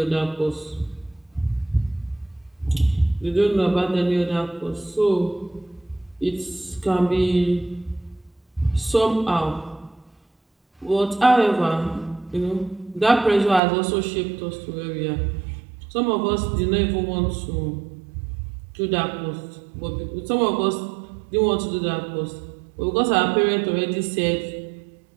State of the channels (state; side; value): drops out; left; at 13.6 s